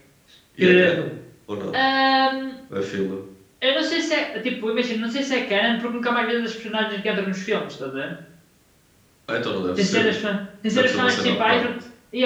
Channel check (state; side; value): identical; both; correlation 1.00